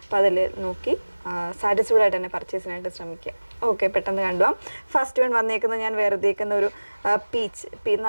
അപ്പോൾ അതിൽ നോക്കി സാറ്റിസ്ഫൈഡ് ആയിട്ട് തന്നെ പർച്ചേസിനായിട്ട് ശ്രമിക്കുക. ഓക്കെ, പെട്ടെന്ന് കണ്ടുപോകാം. ഫസ്റ്റ് വൺ വന്നേക്കുന്നത് ഞാൻ വേർതിരിക്കുന്ന ഒരു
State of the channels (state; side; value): inverted; both; correlation -1.00